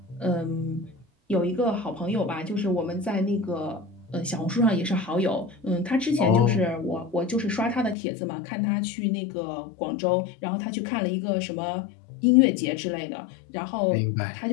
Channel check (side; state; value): right; drops out; at 8.0 s